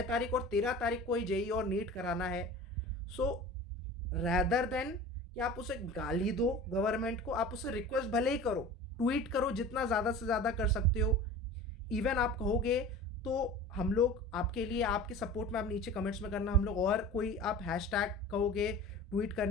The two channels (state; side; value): normal; both; correlation 0.38